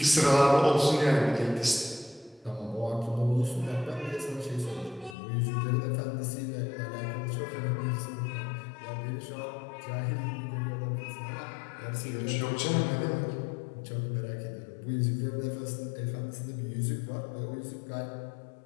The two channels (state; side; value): drops out; right; at 5.2 s